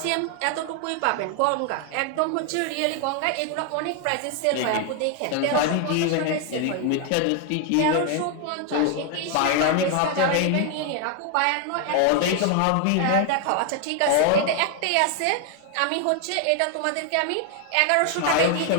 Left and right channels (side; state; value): both; different; correlation 0.00